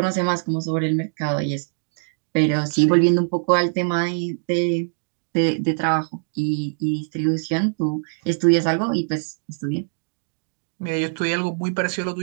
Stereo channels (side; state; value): left; silent; digital silence